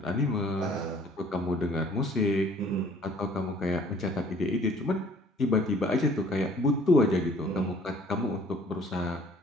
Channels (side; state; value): both; normal; correlation 0.56